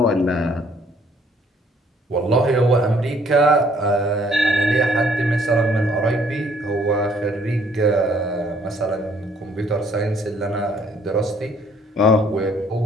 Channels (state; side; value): normal; both; correlation 0.63